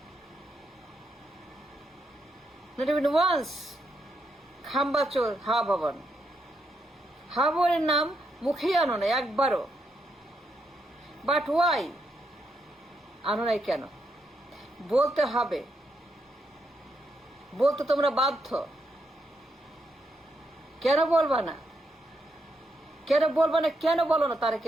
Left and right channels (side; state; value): both; normal; correlation 0.80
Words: Not even once. খাম্বাচোর, হাওয়া ভবন। হাওয়া ভবনের নাম মুখেই আনো না একবারও। বাট ওয়াই আনো নাই কেন? বলতে হবে, বলতে তোমরা বাধ্য। কেন বলবা না? কেন বলবা না? কেন বলো না